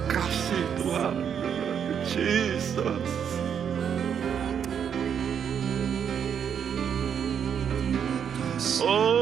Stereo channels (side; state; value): left; quieter; 8.0 dB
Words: kasih Tuhan. Jesus.